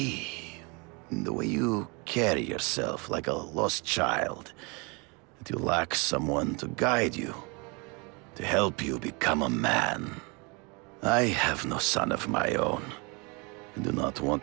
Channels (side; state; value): left; quieter; 30.1 dB